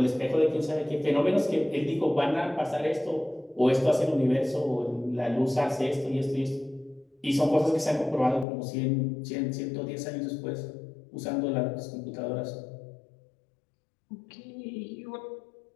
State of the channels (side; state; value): right; drops out; at 8.5 s